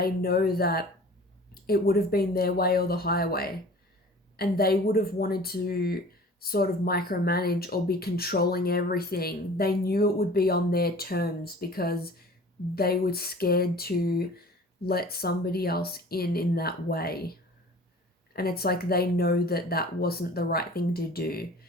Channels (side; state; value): both; normal; correlation 0.44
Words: know that it would have been their way or the highway, and they would have wanted to sort of micromanage or be controlling everything. They knew it would be on their terms because they were scared to let somebody else in that way. And it's like they know that that wasn't the right thing to do.